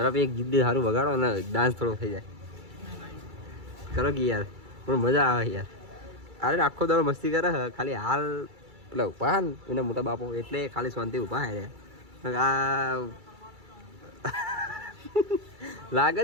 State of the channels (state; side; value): late; left; 2.3 ms